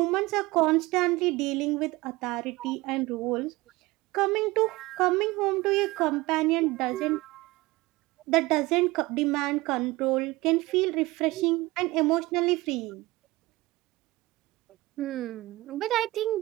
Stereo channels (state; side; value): quieter; left; 20.5 dB